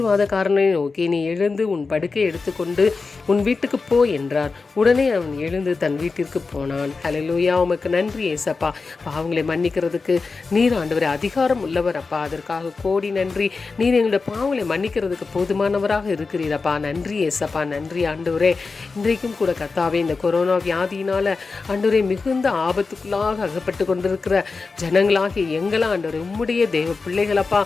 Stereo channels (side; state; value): right; quieter; 4.3 dB